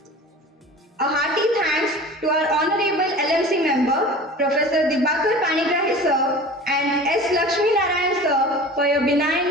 A hearty thanks to our Honorable LMC member, Professor Panigrahi sir and S. Lakshmi Narayan sir for your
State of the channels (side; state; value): both; normal; correlation 0.39